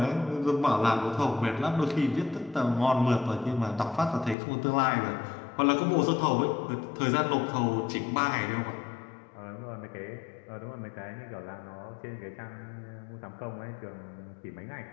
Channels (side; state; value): right; drops out; at 4.4 s